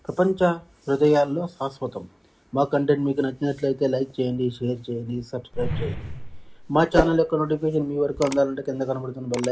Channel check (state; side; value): identical; both; correlation 1.00